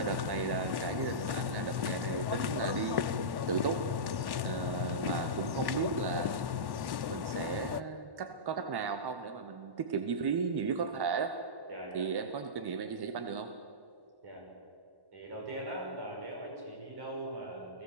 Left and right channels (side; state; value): left; late; 1.1 ms